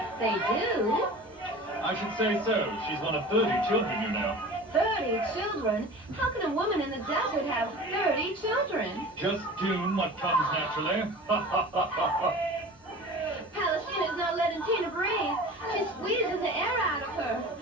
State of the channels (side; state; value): both; normal; correlation 0.38